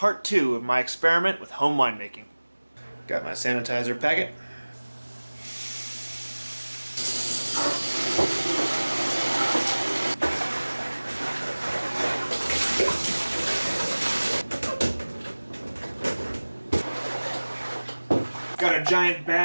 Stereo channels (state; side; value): inverted; both; correlation -1.00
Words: 2 of my experiment with home winemaking. Got my sanitizer packet. Got a giant